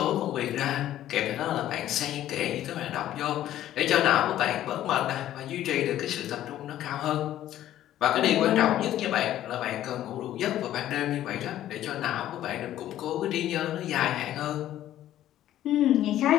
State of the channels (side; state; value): right; quieter; 12.7 dB